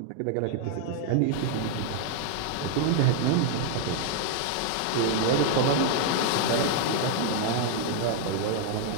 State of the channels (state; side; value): different; both; correlation 0.00